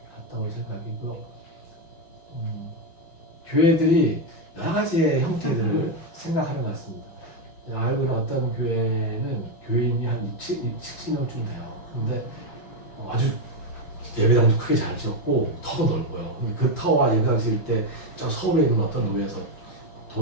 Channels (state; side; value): late; right; 5.8 ms